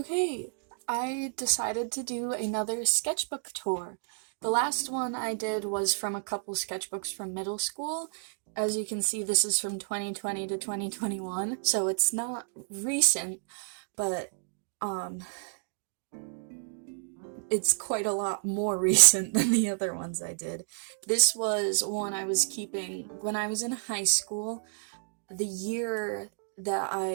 I decided to do another sketchbook tour. The last one I did was from a couple sketchbooks from middle school. As you can see, this is from 2020 to 2021, so it's not recent, but um, it's quite a lot more recent than the other ones I did. This was one I was keeping when I was in high school, the year that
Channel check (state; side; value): silent; left; digital silence